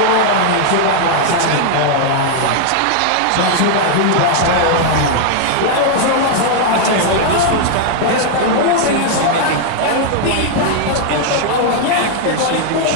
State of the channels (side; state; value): both; different; correlation 0.00